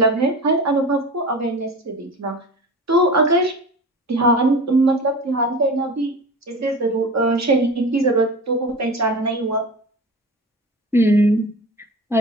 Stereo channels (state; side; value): normal; both; correlation 0.33